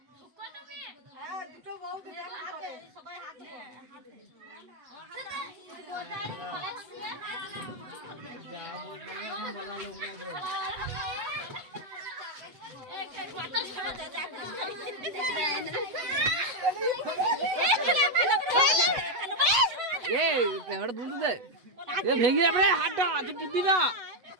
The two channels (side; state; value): left; late; 8.0 ms